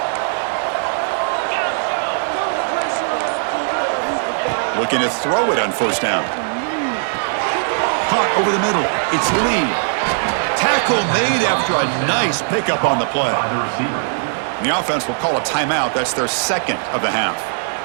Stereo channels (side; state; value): left; silent; digital silence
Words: Looking to throw it on first down. Caught over the middle. It's Lee. Tackle made after a nice pickup on the play. The offense will call a timeout. That's their second of the half.